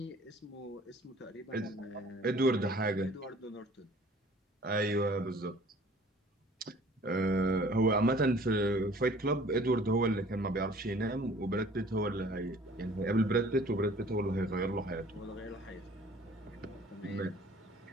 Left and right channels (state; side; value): normal; both; correlation 0.52